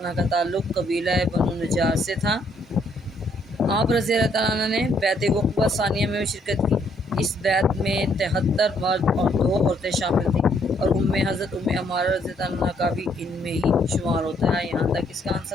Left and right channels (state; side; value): normal; both; correlation 0.69